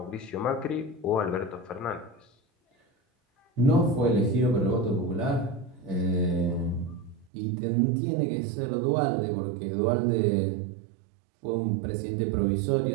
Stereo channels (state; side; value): drops out; left; at 7.3 s